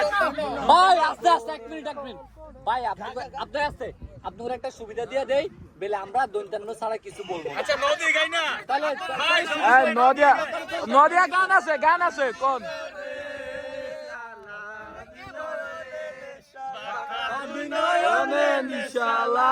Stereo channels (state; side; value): identical; both; correlation 1.00